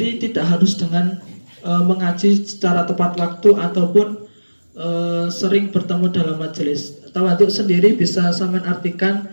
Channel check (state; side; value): inverted; both; correlation -1.00